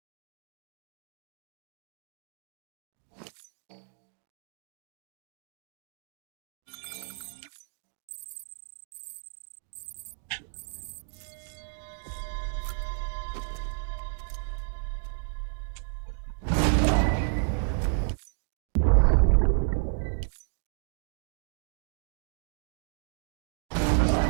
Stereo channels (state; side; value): silent; left; digital silence